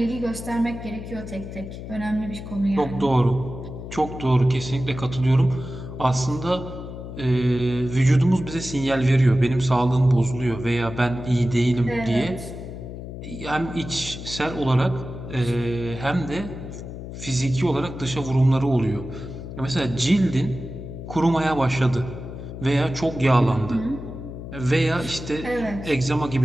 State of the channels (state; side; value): noise; left; hum, 10 dB below the sound